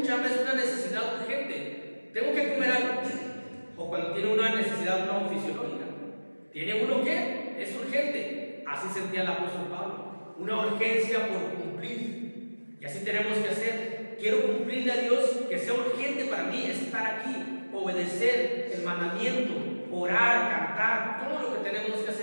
hambre es una necesidad urgente, tengo que comer algo. O cuando tiene una necesidad no fisiológica, tiene uno que es urgente. Así sentía el apóstol Pablo, una urgencia por cumplir. Y así tenemos que hacer. Quiero cumplirle a Dios, que sea urgente para mí estar aquí, obedecer el mandamiento, orar, cantar, todo lo que tenemos que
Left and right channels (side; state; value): both; inverted; correlation -1.00